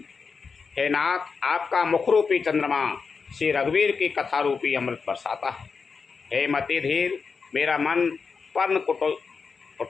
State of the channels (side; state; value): right; quieter; 5.2 dB